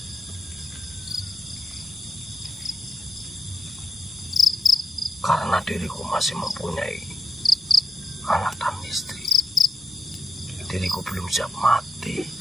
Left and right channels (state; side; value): normal; both; correlation 0.83